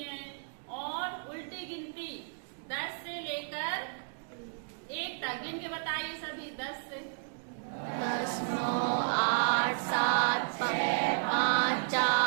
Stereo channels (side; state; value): left; silent; digital silence